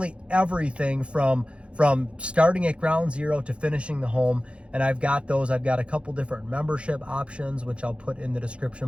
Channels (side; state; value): left; late; 0.059 ms